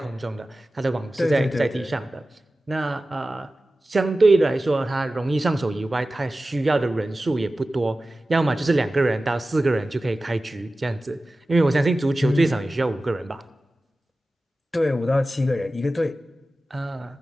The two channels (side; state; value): both; normal; correlation 0.95